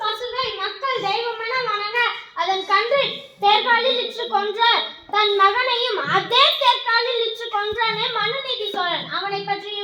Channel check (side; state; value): both; identical; correlation 1.00